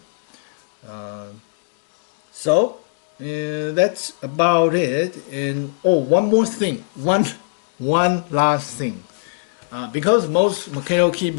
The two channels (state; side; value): silent; right; digital silence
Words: So that's about it. And oh, one more thing, one last thing, because most mechanical